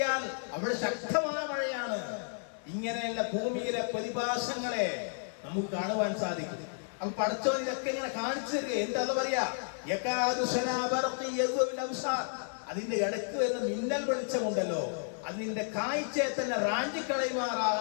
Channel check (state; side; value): silent; right; digital silence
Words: അവിടെ ശക്തമായ മഴയാണ്. ഇങ്ങനെയുള്ള ഭൂമിയിലെ പ്രതിഭാസങ്ങളെ നമുക്ക് കാണുവാൻ സാധിക്കും. അപ്പൊ പടച്ചോൻ ഇതൊക്കെ ഇങ്ങനെ കാണിച്ചു തരിക. എന്താ പറയാ, അതിന്റെ ഇടയ്ക്ക് വരുന്ന മിന്നൽ വെളിച്ചമുണ്ടല്ലോ, അതിന്റെ കാഴ്ചയെ തന്നെ